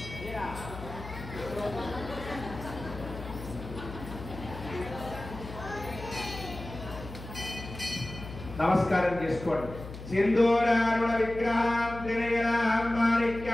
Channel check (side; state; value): left; noise; hum, 12 dB below the sound